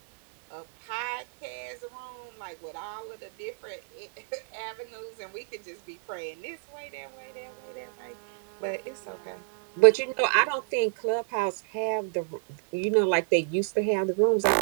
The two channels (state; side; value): silent; left; digital silence